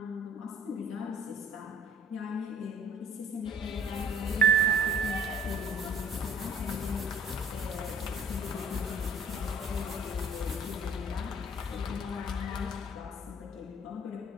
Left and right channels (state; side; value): normal; both; correlation 0.52